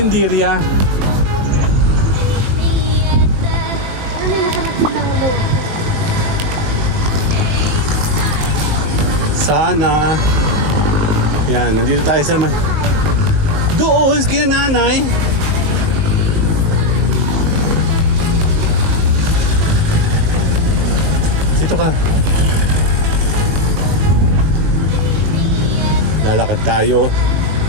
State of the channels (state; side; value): late; left; 21 ms